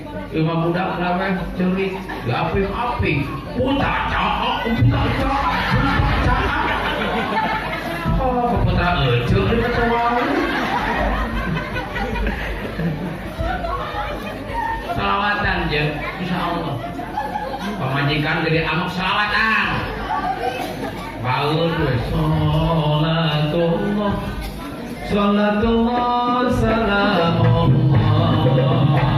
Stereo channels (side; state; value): both; identical; correlation 1.00